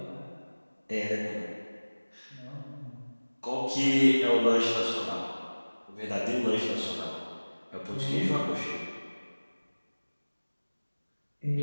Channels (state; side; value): inverted; both; correlation -1.00